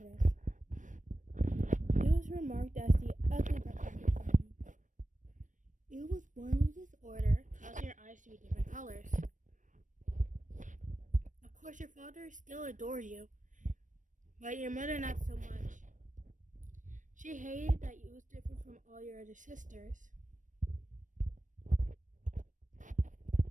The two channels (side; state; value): left; late; 0.37 ms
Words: this. It was remarked as the ugly duckling. You was born with disorder, causing your eyes to be different colors. Of course, your father still adores you, but your mother not so much. She hated that you was different from all your other sisters.